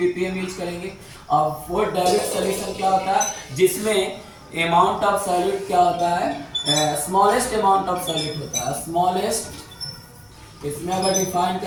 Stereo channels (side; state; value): both; identical; correlation 1.00